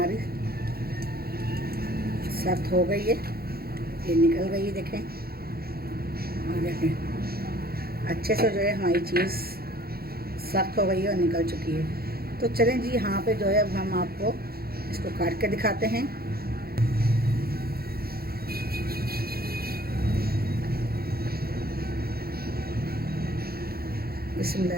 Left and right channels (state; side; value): late; left; 0.44 ms